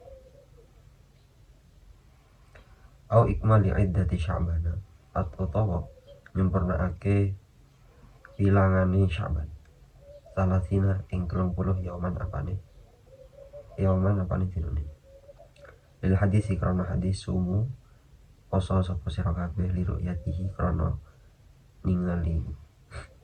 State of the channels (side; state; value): both; identical; correlation 1.00